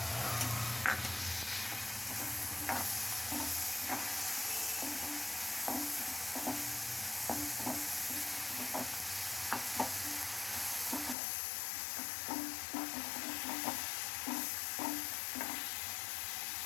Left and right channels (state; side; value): drops out; right; at 11.2 s